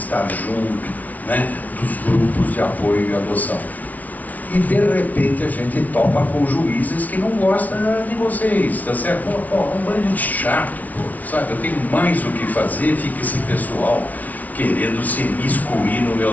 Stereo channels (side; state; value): right; late; 0.074 ms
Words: junto, né, dos grupos de apoio e adoção. E de repente a gente topa com juízes que não gostam de vocês, tá certo? Pô, um bando de chato, pô, sabe? Eu tenho mais o que fazer, fica esse pessoal querendo se miscuir no